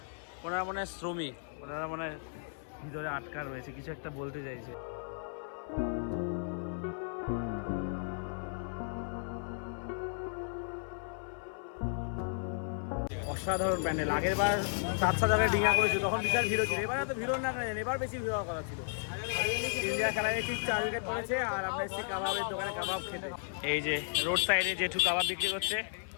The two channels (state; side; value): silent; right; 55 dB below the other